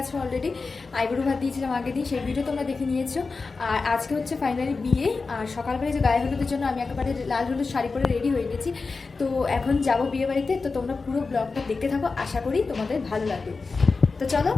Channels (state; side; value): quieter; right; 4.2 dB